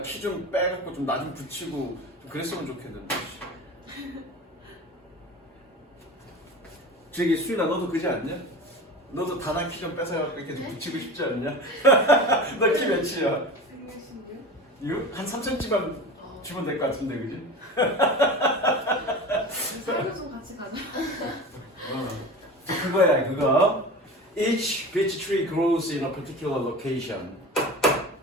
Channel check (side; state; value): both; normal; correlation 0.32